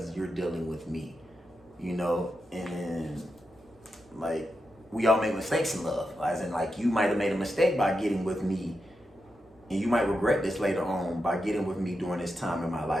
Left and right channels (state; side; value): normal; both; correlation 0.87